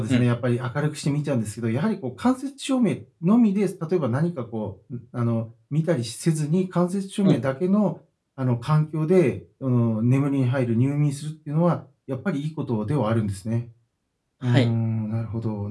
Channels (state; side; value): identical; both; correlation 1.00